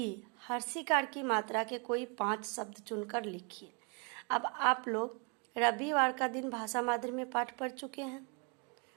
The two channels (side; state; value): left; quieter; 34.4 dB